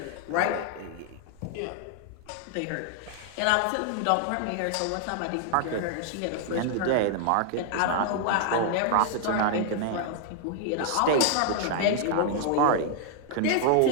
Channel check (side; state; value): both; different; correlation 0.00